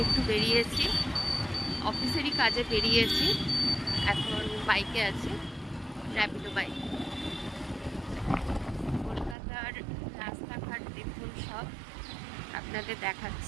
একটু বেরিয়েছি, অফিসেরই কাজে বেরিয়েছি। এখন বাইকে আছি, র্যাপিডো বাইক। কলকাতার রাস্তাঘাট দেখুন, সব আপনাদের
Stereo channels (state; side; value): drops out; left; at 9.3 s